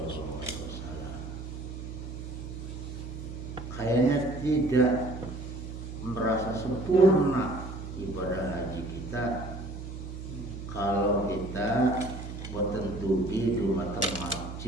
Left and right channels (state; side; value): noise; right; hum, 9 dB below the sound